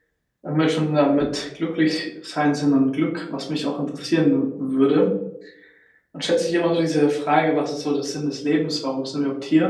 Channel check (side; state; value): both; identical; correlation 1.00